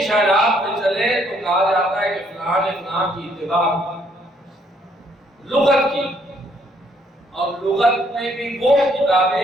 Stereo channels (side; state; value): both; normal; correlation 0.68